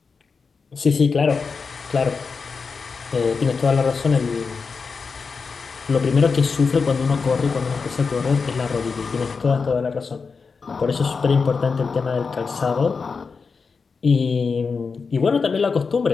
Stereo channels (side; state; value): right; quieter; 5.0 dB